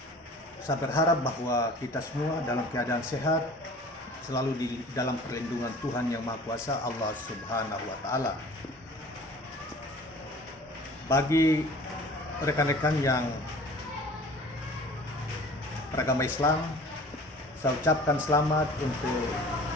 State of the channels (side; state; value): both; normal; correlation 0.45